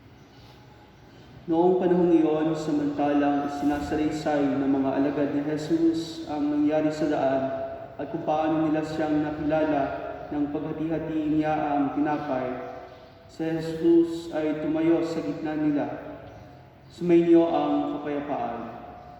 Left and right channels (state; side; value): identical; both; correlation 1.00